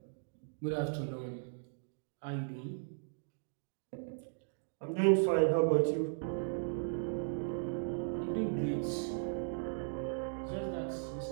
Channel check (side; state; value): left; silent; digital silence